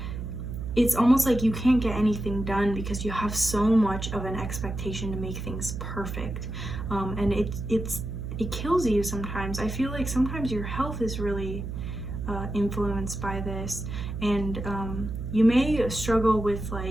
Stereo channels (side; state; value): right; noise; hum, 6 dB below the sound